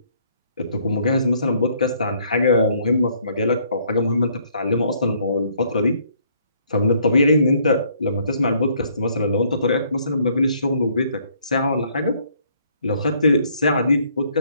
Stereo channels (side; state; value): both; inverted; correlation -0.65